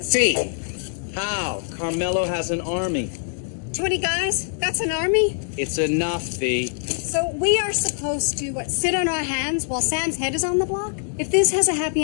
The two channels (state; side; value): silent; right; digital silence